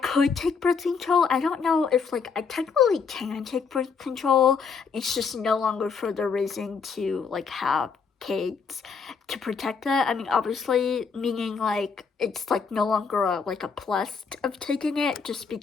could take birth control. I don't know if like I technically can take birth control. It's just no longer for the reason to like have kids to protect that. I mean, obviously, meaning like it's like no longer like a plus of taking it, just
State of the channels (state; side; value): quieter; right; 5.6 dB